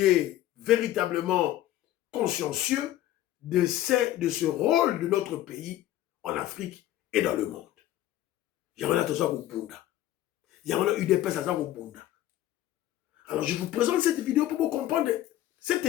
est véritablement consciencieux de ce rôle de notre pays en Afrique et dans le monde. Il y en a tous au Bunda. Il y en a eu des personnes au Bunda. Alors je vous présente cette vidéo pour vous comprendre cet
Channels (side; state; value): right; quieter; 13.9 dB